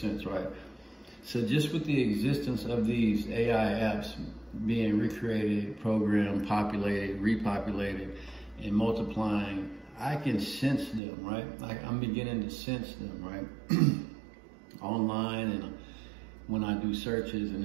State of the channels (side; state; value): left; drops out; at 11.0 s